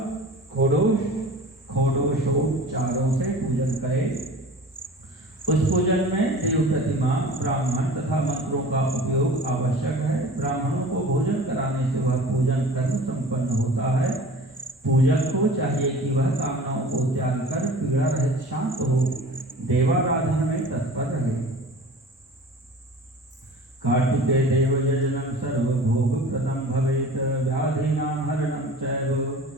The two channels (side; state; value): both; normal; correlation 0.40